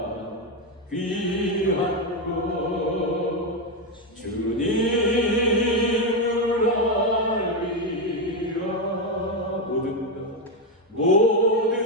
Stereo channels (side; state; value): both; normal; correlation 0.07